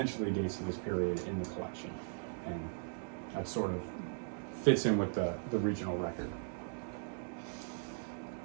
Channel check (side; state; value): left; silent; digital silence